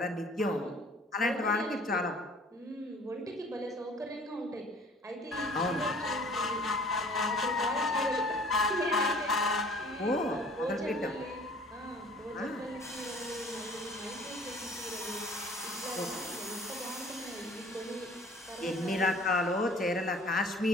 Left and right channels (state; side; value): normal; both; correlation 0.51